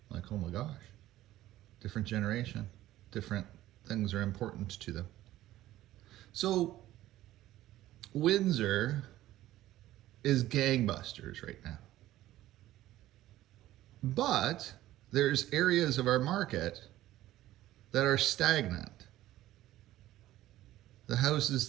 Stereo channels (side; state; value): left; quieter; 14.8 dB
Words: I'm like, oh my gosh. Different generation. Different things are important to them. So, Windsor is gangbusters right now. But there's areas of our market that are stagnant. The houses